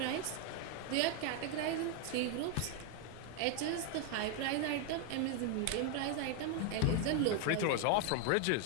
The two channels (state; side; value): different; both; correlation 0.01